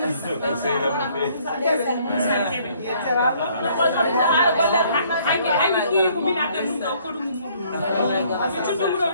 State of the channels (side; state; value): both; inverted; correlation -0.62